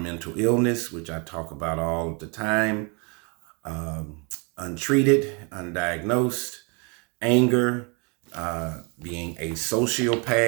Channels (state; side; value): quieter; left; 33.1 dB